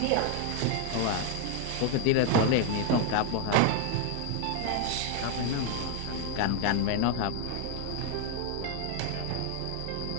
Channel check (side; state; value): both; different; correlation 0.01